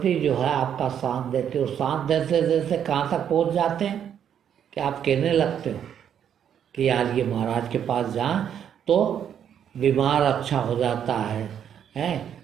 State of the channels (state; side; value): quieter; left; 9.0 dB